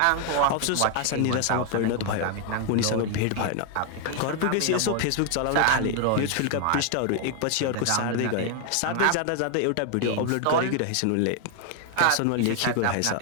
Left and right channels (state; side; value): different; both; correlation 0.00